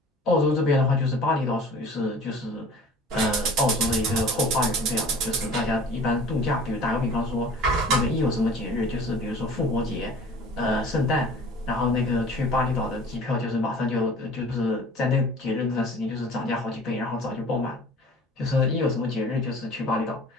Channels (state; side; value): normal; both; correlation 0.45